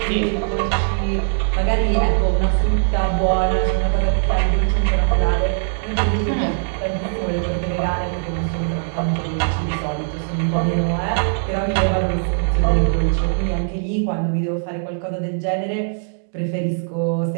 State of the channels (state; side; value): silent; left; digital silence